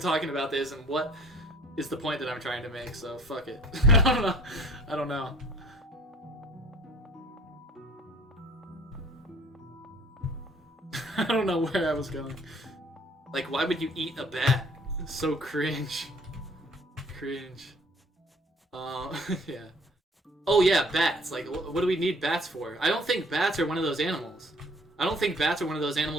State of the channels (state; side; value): normal; both; correlation 0.53